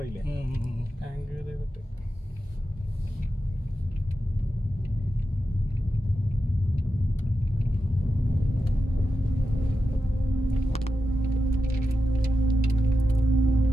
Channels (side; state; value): both; normal; correlation 0.90